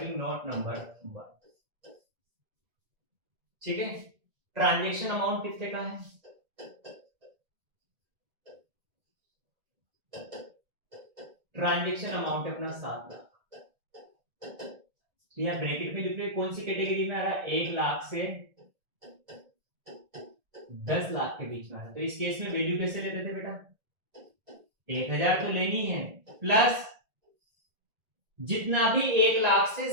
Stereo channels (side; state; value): left; late; 1.8 ms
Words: नोट नंबर 1। ठीक है, ट्रांजेक्शन अमाउंट कितने का है, ट्रांजेक्शन अमाउंट है अपना 7 लाख। तो यहाँ ब्रैकेट में लिख रहे कौन सी कैटेगरी में आ रहा है, 1 लाख से 10 लाख के बीच में आ रहा है। तो इस केस में वैल्यू कैसे लेते थे बेटा, 1000 तो लेनी है, प्लस जितना भी 1 लाख से